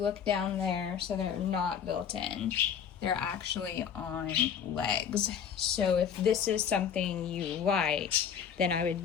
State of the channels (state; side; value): quieter; right; 7.9 dB